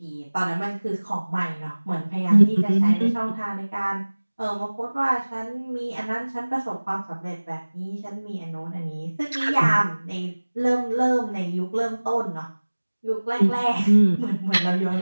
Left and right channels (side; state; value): both; inverted; correlation -1.00